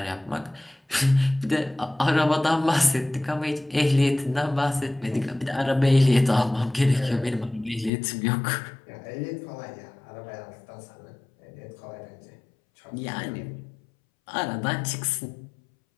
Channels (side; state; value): right; drops out; at 7.9 s